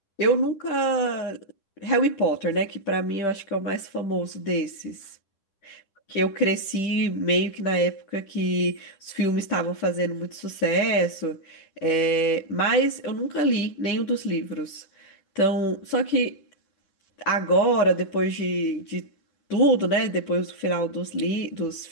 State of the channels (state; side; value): late; right; 10 ms